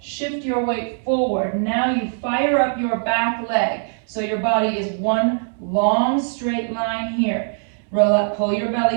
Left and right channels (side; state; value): left; silent; 64 dB below the other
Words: shift your weight forward. Now you fire up your back leg. So your body is one long straight line here. Pull your